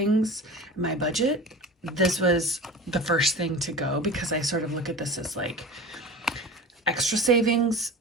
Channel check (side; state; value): both; normal; correlation 0.34